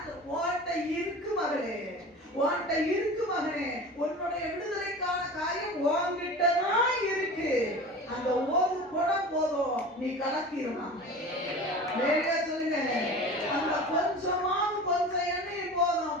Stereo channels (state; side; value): normal; both; correlation 0.35